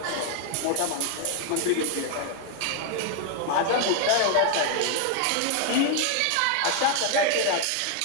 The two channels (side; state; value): both; different; correlation 0.00